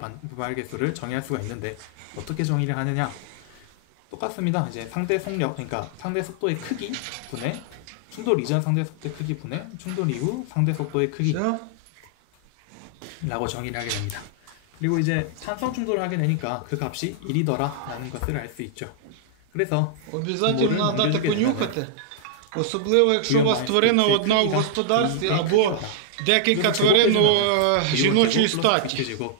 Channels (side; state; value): both; different; correlation -0.01